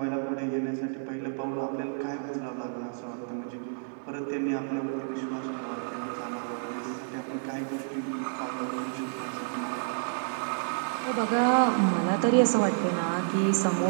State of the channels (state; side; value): silent; left; digital silence